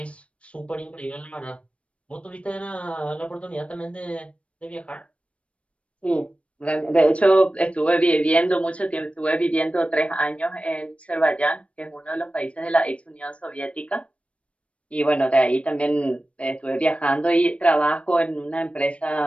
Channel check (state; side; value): late; right; 0.062 ms